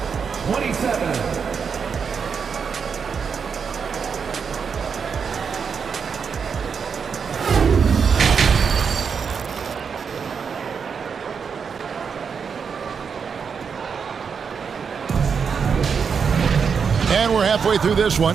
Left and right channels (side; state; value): left; quieter; 6.2 dB